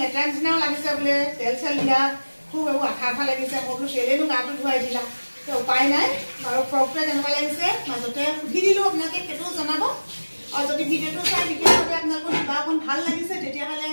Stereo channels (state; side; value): inverted; both; correlation -1.00